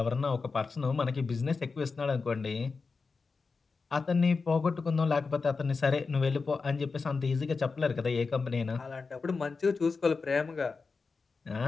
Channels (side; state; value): right; quieter; 4.5 dB